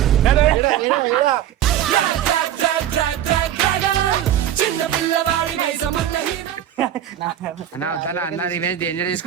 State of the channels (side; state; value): left; quieter; 11.1 dB